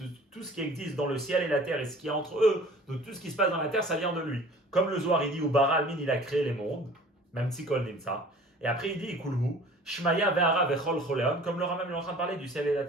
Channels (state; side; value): normal; both; correlation 0.47